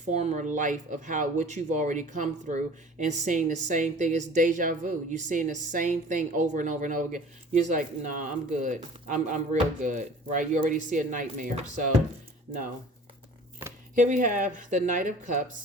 life of what you've already come through and seeing the same thing. It's deja vu. You're seeing the same thing over and over and over again. You're just like, nah, I'm good. I'm real good, right? You already see a nightmare. So, no. Here we have the Knight of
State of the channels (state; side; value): normal; both; correlation 0.46